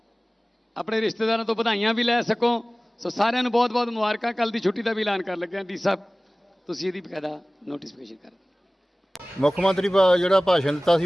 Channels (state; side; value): normal; both; correlation 0.98